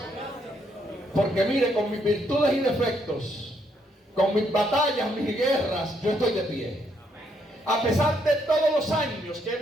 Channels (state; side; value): normal; both; correlation 0.73